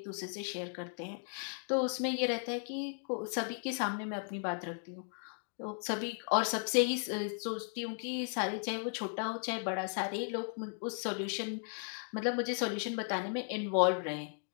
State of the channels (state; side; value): silent; right; 54 dB below the other